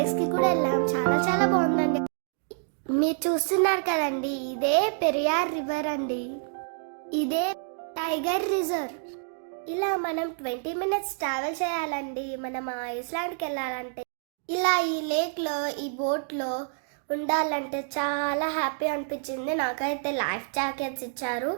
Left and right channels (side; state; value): left; silent; digital silence